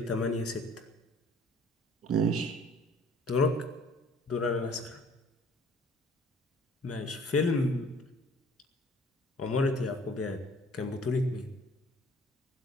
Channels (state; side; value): normal; both; correlation 0.53